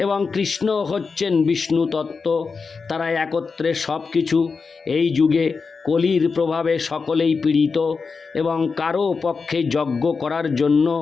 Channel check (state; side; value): quieter; right; 4.9 dB